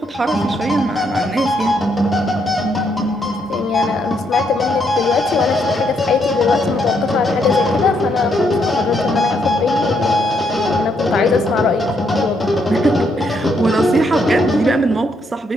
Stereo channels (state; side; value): normal; both; correlation 0.75